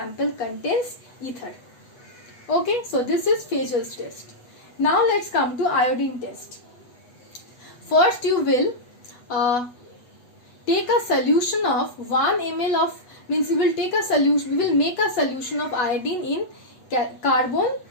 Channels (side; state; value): right; late; 8.1 ms